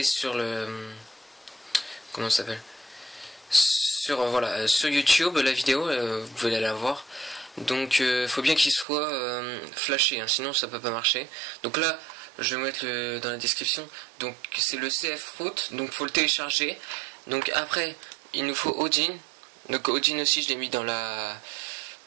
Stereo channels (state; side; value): drops out; left; at 8.8 s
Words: sur le... comment ça s'appelle, sur voilà, sur YouTube, la vidéo, vous pouvez aller la voir. Donc faut bien qu'il soit flashé, hein, sinon ça peut pas marcher. Donc là, je vais mettre dans la description. Donc c'est le CF Root, donc faut le télécharger. Donc après, il nous faut Odin. Donc Odin aussi, je l'ai mis dans la...